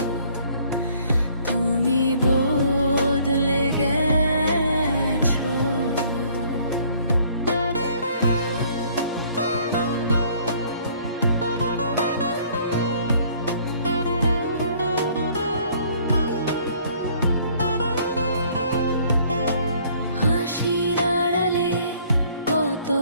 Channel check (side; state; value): both; inverted; correlation -0.60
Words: তুমি বদলে গেছো। হাসির আড়ালে কত